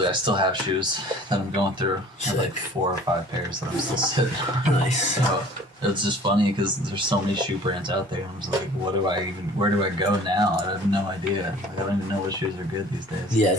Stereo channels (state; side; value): normal; both; correlation 0.49